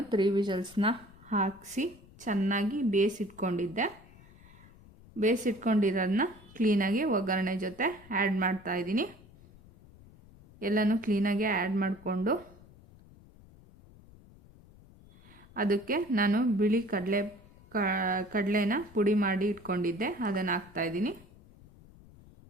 3 ವಿಷಲ್ಸ್ನ ಹಾಕಿಸಿ ಚೆನ್ನಾಗಿ ಬೇಯಿಸಿಟ್ಕೊಂಡಿದ್ದೆ. ಬೇಯಿಸಿಟ್ಕೊಂಡಿರೋದನ್ನ ಕ್ಲೀನಾಗಿ ಒಗ್ಗರಣೆ ಜೊತೆ ಆ್ಯಡ್ ಮಾಡ್ತಾಯಿದ್ದೀನಿ. ಎಲ್ಲನೂ ಕ್ಲೀನಾಗಿ ಆ್ಯಡ್ ಮಾಡಿಕೊಂಡು ಅದಕ್ಕೆ ನಾನು ಬಿಳಿ ಕಡಲೆನ ಪುಡಿ ಮಾಡಿ ಇಟ್ಕೊಂಡಿದ್ದೆ, ಅದನ್ನು ಹಾಕ್ತಾಯಿದ್ದೀನಿ.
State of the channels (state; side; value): noise; left; rumble, 23 dB below the sound